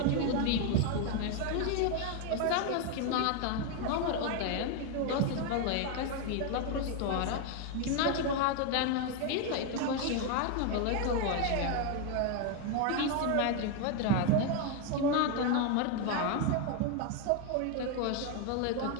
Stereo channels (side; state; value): both; different; correlation 0.01